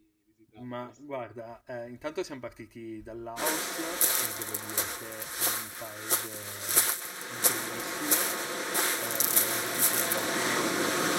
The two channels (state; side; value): identical; both; correlation 1.00